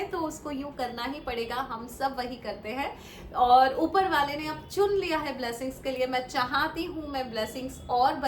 तो उसको यूं करना ही पड़ेगा। हम सब वही करते हैं, और ऊपर वाले ने अब चुन लिया है ब्लेसिंग्स के लिए। मैं चाहती हूँ मैं ब्लेसिंग्स और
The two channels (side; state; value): both; identical; correlation 1.00